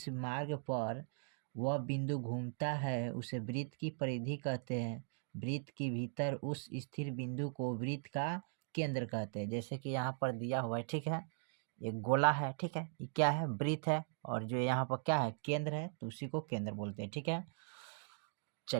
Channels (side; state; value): left; silent; digital silence